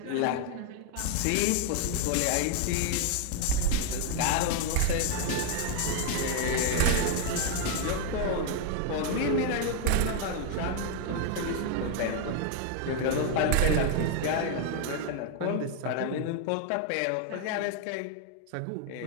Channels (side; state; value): both; different; correlation 0.00